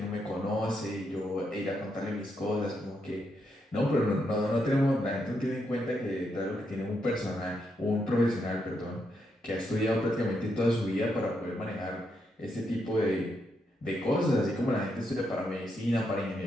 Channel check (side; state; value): both; normal; correlation 0.80